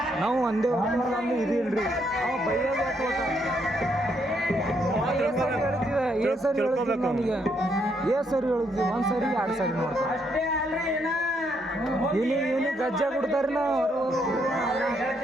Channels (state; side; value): normal; both; correlation 0.74